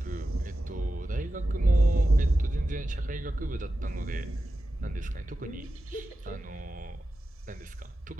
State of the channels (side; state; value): both; normal; correlation 0.92